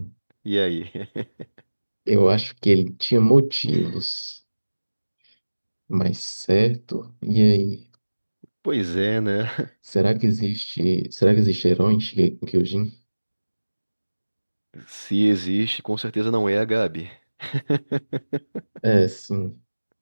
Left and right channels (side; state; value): both; inverted; correlation -1.00